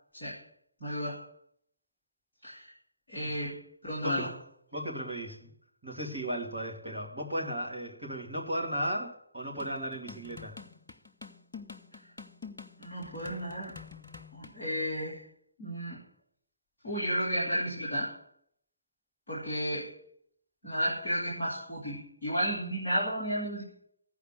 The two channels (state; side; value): inverted; both; correlation -0.75